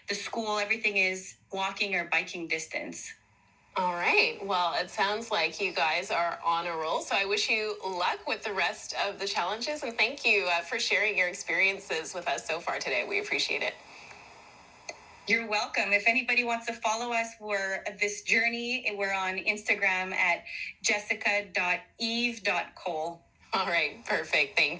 the school, everything is walking or biking distance. All right. Well, it sounds like you guys are on a roll. So I wish you luck with the rest of the challenges. And thank you for sharing your experiences with us so far today. We appreciate it. You're welcome. If anybody wants to follow us, we're this journey. We're on Instagram at jessica.eve.cole. All right. Perfect.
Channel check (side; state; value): both; identical; correlation 1.00